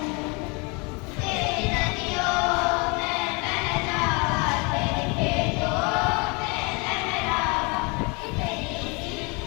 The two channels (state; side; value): quieter; right; 29.9 dB